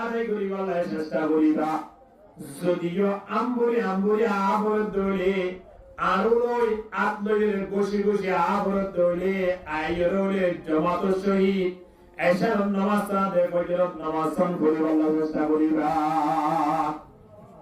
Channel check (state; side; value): identical; both; correlation 1.00